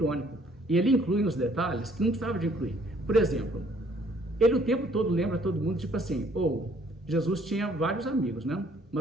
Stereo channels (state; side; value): normal; both; correlation 0.62